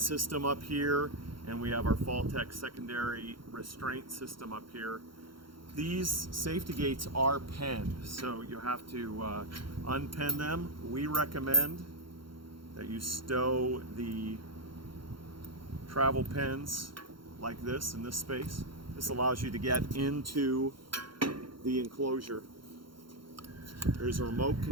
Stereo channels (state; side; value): late; left; 0.73 ms